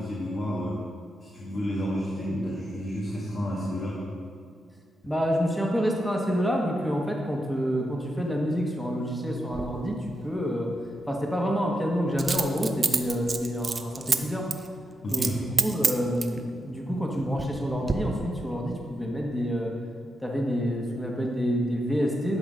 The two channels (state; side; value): normal; both; correlation 0.86